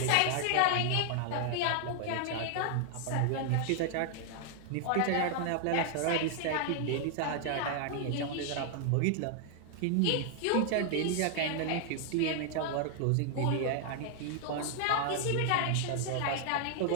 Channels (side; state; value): both; different; correlation 0.00